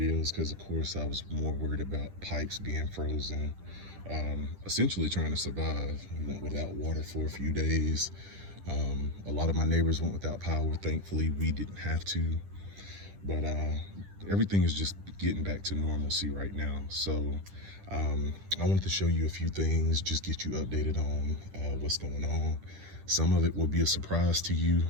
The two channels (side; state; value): left; late; 10 ms